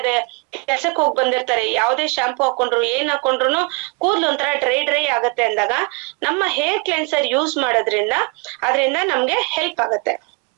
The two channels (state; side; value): quieter; left; 31.5 dB